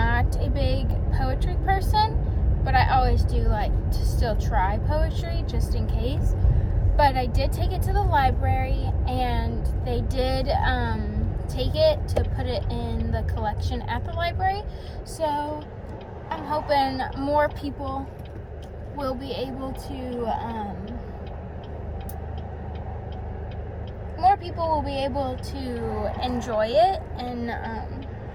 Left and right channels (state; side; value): identical; both; correlation 1.00